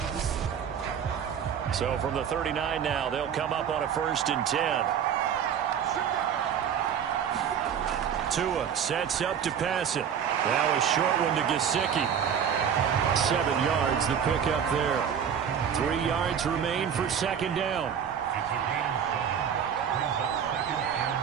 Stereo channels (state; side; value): quieter; left; 8.2 dB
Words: So from the 39 now, they'll come up on a 1st and 10. Tua sets up to pass it. Now a short one to Gesicki. 7 yards the pickup there. 3 yards remain for 2nd down.